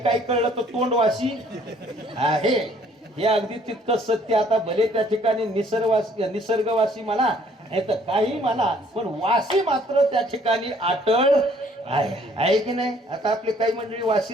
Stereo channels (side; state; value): both; normal; correlation 0.60